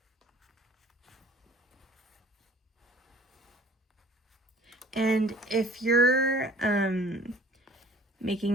And if you're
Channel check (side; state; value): both; normal; correlation 0.51